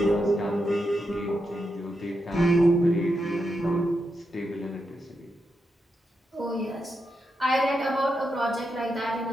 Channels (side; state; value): both; normal; correlation 0.85